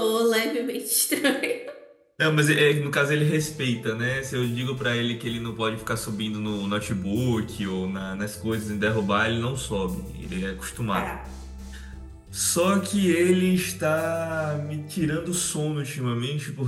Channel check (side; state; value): both; identical; correlation 1.00